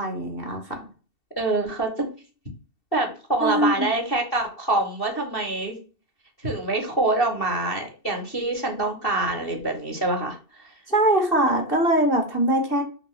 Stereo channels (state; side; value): late; right; 2.7 ms